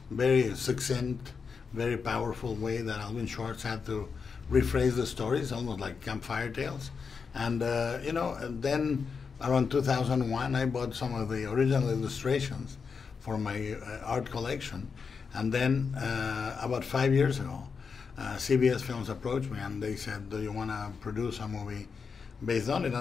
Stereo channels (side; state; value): right; quieter; 5.6 dB